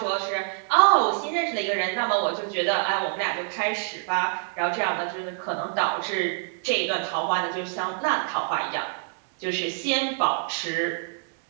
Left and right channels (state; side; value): silent; left; digital silence